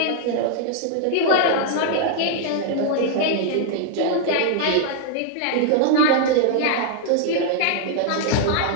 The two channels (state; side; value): different; both; correlation 0.00